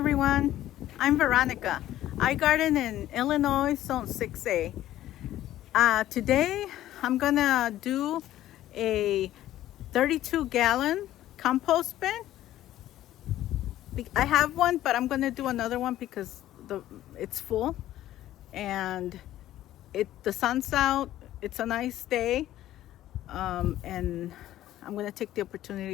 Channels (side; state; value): right; quieter; 13.6 dB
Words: I'm Veronica. I garden in Illinois, Zone 6A. Today I'm gonna do a 32-gallon compost bin. I have one, but I'm gonna do another one because it's full and the sun's out. It's a nice day, and I'm gonna take the